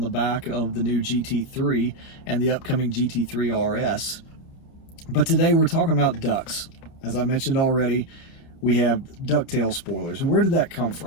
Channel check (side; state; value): right; late; 30 ms